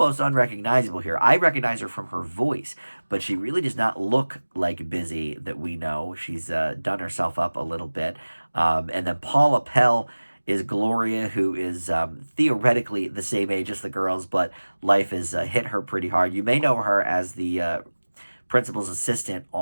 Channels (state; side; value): inverted; both; correlation -1.00